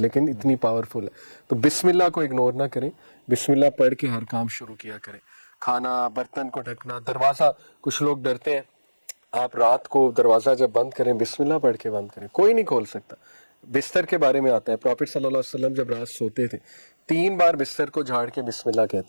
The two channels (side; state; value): both; inverted; correlation -1.00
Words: لیکن اتنی پاورفل ہے. تو بسم اللہ کو اگنور نہ کریں, بسم اللہ پڑھ کے ہر کام شروع کیا کریں. کھانا, برتن کو ڈھکنا, دروازہ, کچھ لوگ ڈرتے ہیں, آپ رات کو دروازہ جب بند کریں بسم اللہ پڑھ کے بند کریں, کوئی نہیں کھول سکتا. بستر کے بارے میں آتا ہے پروفیٹ صلی اللہ علیہ وسلم جب رات سوتے تھے 3 بار بستر کو جھاڑ کے بسم اللہ